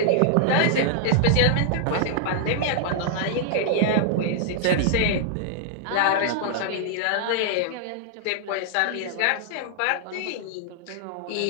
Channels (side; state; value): both; different; correlation -0.01